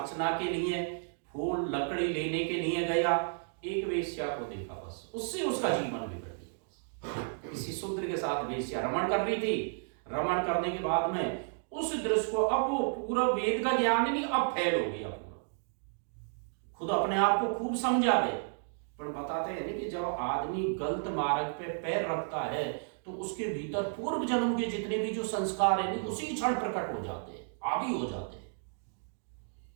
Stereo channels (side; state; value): left; silent; digital silence